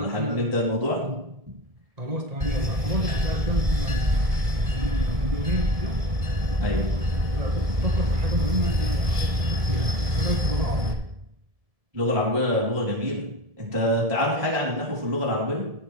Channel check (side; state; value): left; late; 1.5 ms